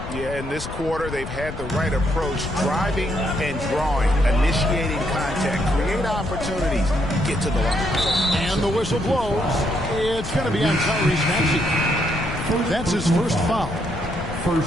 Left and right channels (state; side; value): noise; left; rumble, 9 dB below the sound